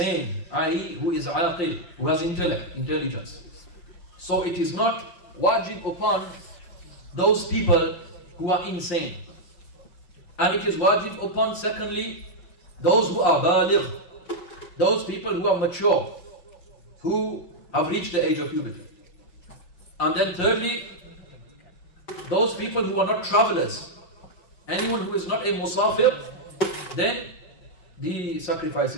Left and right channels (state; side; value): late; right; 5.7 ms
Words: i.e. who is aqil, who has intelligence. So it is not wajib upon those people who are insane. And it is wajib upon, secondly, those who are baligh, those people who are mature, who have reached the age of puberty. And then thirdly, those people who are not travelers. Anyone who is not a musafir, then the sacrifice